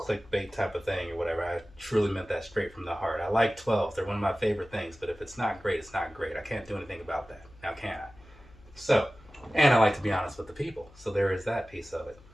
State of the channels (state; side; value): noise; left; hum, 24 dB below the sound